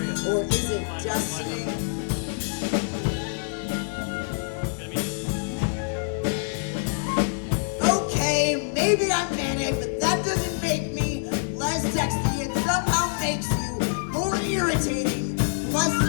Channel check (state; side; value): silent; right; digital silence